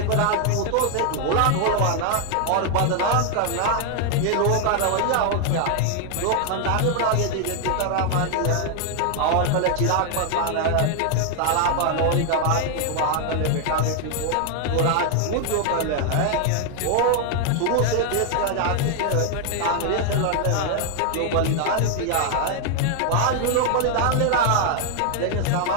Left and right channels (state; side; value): different; both; correlation 0.00